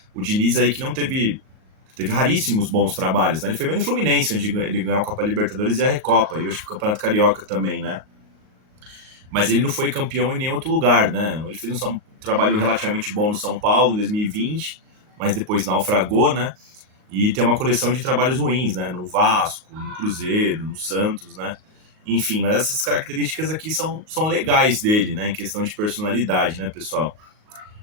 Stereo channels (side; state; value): left; late; 38 ms